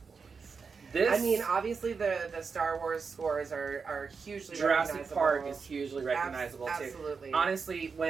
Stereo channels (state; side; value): quieter; left; 5.3 dB